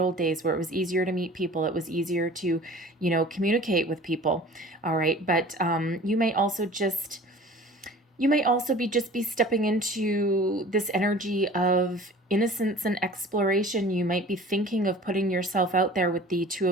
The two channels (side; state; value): both; normal; correlation 0.44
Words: days where it was easier to meet people. It was easier to, communicate with people. All right. But you may also be stepping into this energy of innocence and exploration. You might be thinking of putting yourself out there with the Two